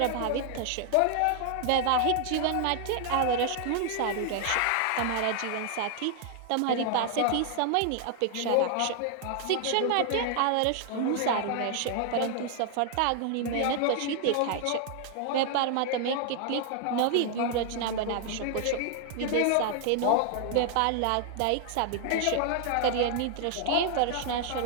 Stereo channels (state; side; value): different; both; correlation 0.00